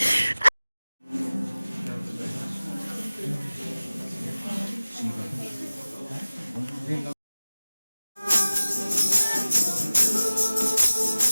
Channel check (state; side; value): inverted; both; correlation -0.97